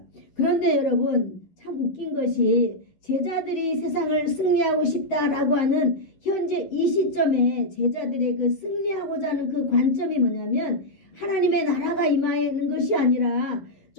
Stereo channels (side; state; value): right; late; 11 ms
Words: 그런데 여러분 참 웃긴 것이 제자들이 세상을 승리하고 싶다라고 하는 현재 이 시점에 제자들의 그 승리하고자 하는 그 관점이 뭐냐면 하나님의 나라가 임하는 것이 아니라